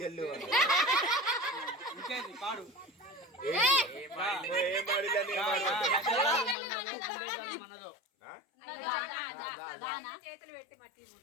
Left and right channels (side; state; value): right; drops out; at 6.6 s